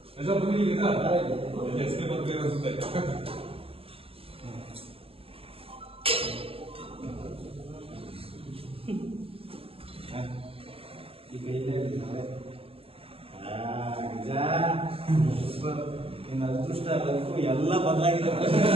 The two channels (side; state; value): left; late; 0.27 ms